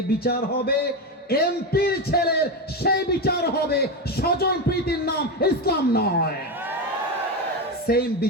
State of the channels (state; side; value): normal; both; correlation 0.14